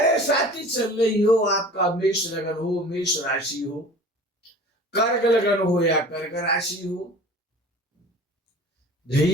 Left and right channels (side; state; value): both; normal; correlation 0.42